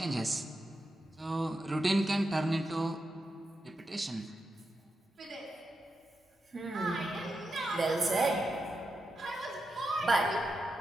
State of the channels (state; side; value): normal; both; correlation 0.88